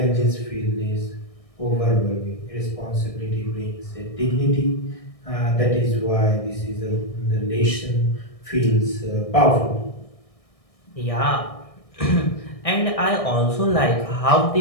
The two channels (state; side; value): late; right; 1.6 ms